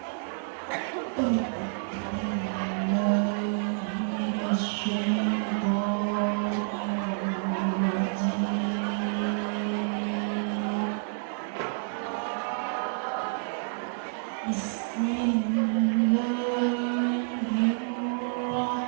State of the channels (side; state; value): left; silent; 58 dB below the other